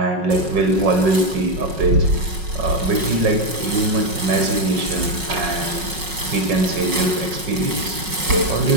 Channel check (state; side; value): late; left; 5.4 ms